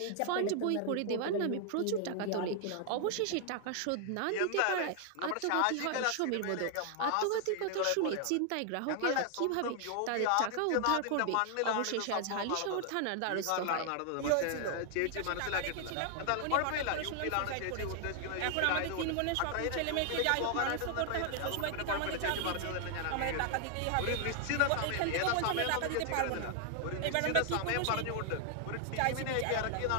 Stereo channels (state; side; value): different; both; correlation 0.00